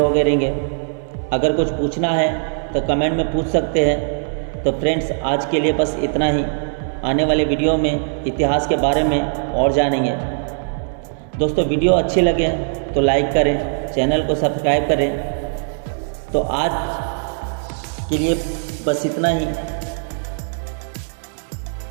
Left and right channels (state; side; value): silent; left; digital silence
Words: हो गए रहेंगे। अगर कुछ पूछना है तो कमेंट में पूछ सकते हैं। तो फ्रेंड्स आज के लिए बस इतना ही। आने वाले वीडियो में इतिहास के बारे में और जानेंगे। दोस्तों वीडियो अच्छे लगे तो लाइक करें, चैनल को सब्सक्राइब करें। तो आज के लिए बस इतना ही।